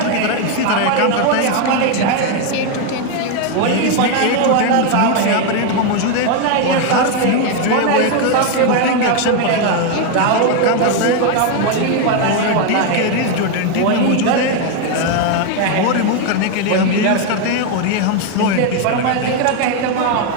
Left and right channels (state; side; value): different; both; correlation 0.01